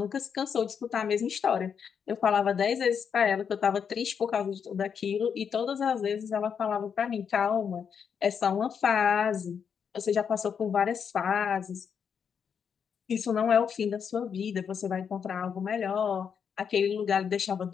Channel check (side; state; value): right; quieter; 7.1 dB